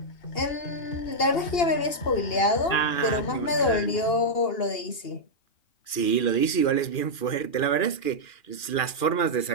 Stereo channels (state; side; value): late; right; 2.4 ms